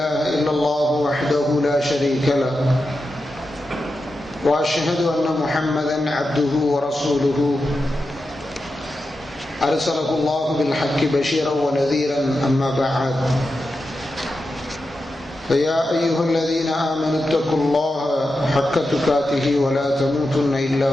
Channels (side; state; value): both; normal; correlation 0.90